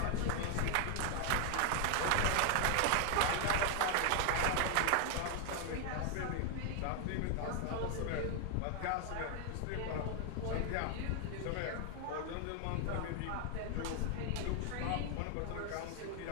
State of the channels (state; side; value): different; both; correlation 0.00